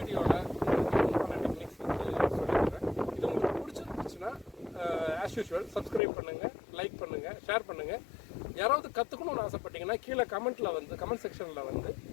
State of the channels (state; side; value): drops out; right; at 6.0 s